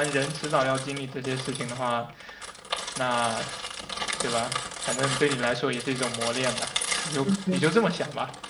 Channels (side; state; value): both; identical; correlation 1.00